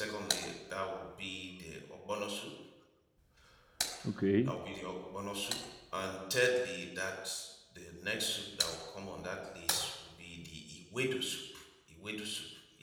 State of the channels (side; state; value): both; identical; correlation 1.00